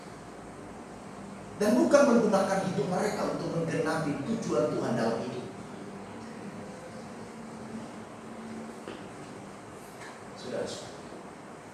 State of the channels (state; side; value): identical; both; correlation 1.00